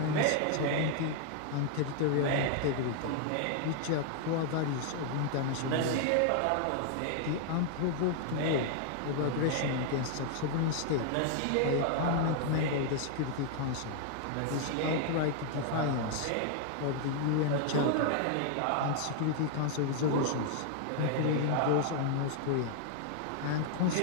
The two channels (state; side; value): different; both; correlation 0.00